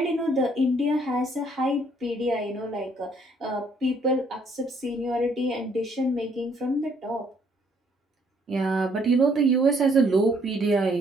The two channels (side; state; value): both; normal; correlation 0.66